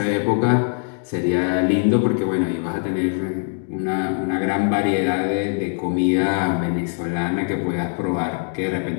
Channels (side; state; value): right; silent; 64 dB below the other